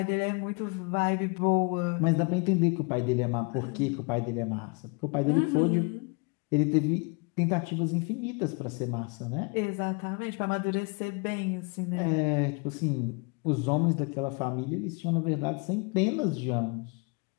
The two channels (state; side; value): quieter; right; 32.1 dB